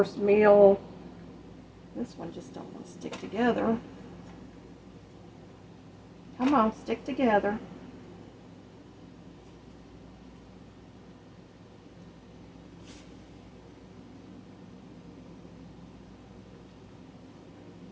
meal? This one just don't want to stick together. Come on, stick together.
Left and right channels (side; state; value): both; identical; correlation 1.00